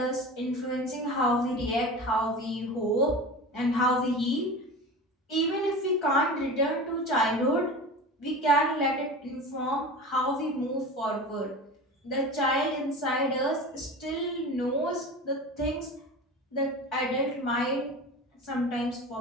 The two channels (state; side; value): normal; both; correlation 0.32